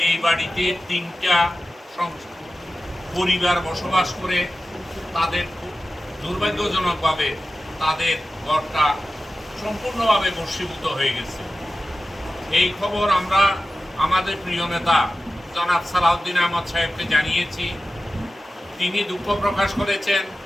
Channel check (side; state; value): both; normal; correlation 0.94